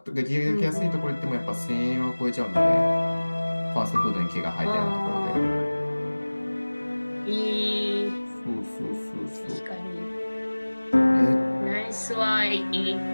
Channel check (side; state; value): both; inverted; correlation -1.00